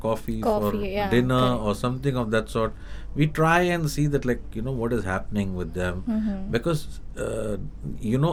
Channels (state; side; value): identical; both; correlation 1.00